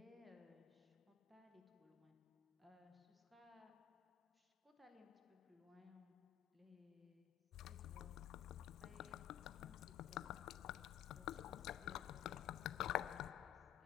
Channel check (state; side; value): quieter; right; 11.6 dB